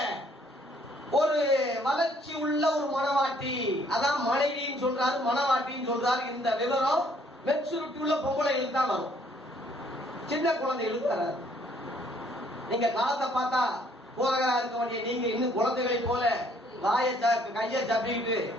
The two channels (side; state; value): both; normal; correlation 0.64